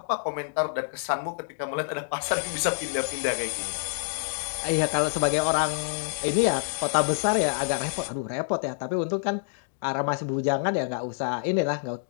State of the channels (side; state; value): right; silent; digital silence